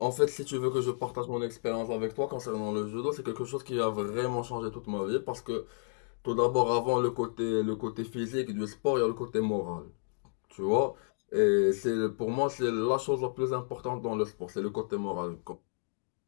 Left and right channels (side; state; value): right; silent; digital silence